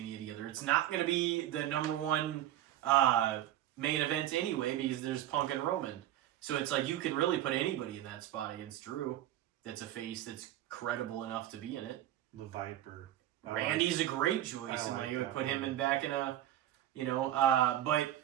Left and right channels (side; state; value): left; quieter; 12.7 dB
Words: together. It's not going to be the number one main event anyway because there's Punk and Roman. So it's you can really put anybody in that spot against Drew that's a face that's credible enough to be in it. The Viper. Randy's a great choice, I and like you would that put him one. in back in a,